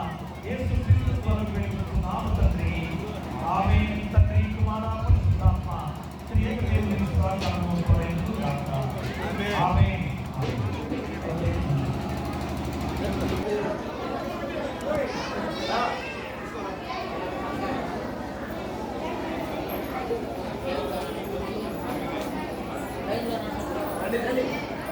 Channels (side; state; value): both; identical; correlation 1.00